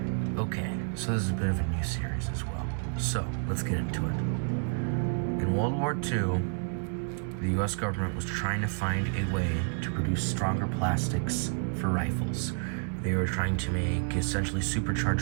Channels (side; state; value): left; silent; 56 dB below the other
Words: Okay, so this is a bit of a new series as well, so let's get into it. In World War II, the US government was trying to find a way to produce stronger plastics for rifles. They were trying to make essentially